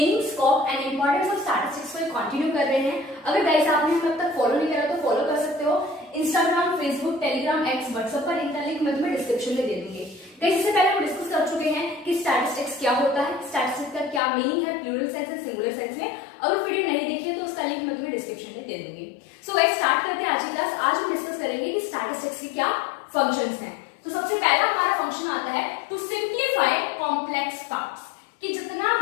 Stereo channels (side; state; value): right; drops out; at 14.2 s